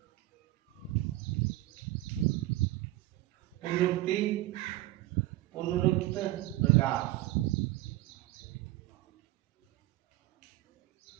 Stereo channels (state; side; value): quieter; left; 16.8 dB